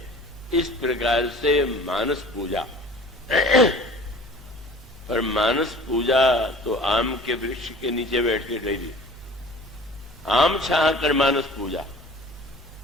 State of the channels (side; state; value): both; normal; correlation 0.45